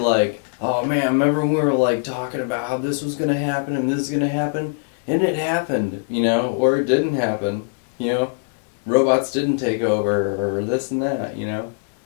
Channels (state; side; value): silent; right; digital silence